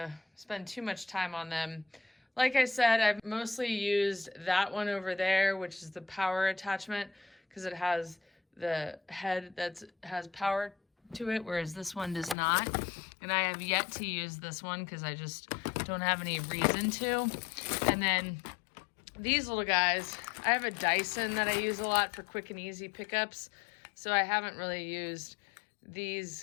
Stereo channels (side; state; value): right; drops out; at 12.4 s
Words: spend too much time on them. Like I said, I've mostly used that one over there, which is the power attachment, because it has the head that has power to it, whereas this one does not. And I have yet to use this one because I just don't have any reason to. And then these little guys, I have a Dyson that I use a lot for quick and easy pickups, so I haven't really used